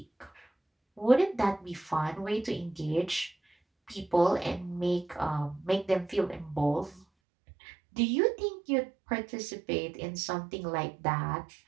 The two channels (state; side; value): drops out; left; at 7.1 s